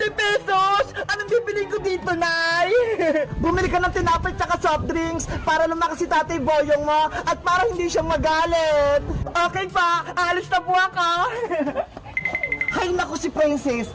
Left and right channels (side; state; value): both; identical; correlation 1.00